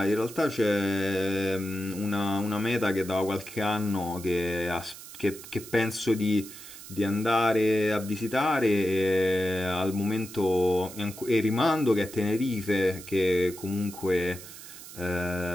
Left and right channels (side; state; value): right; noise; hiss, 15 dB below the sound